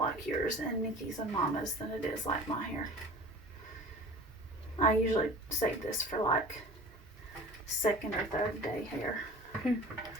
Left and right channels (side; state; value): both; normal; correlation 0.41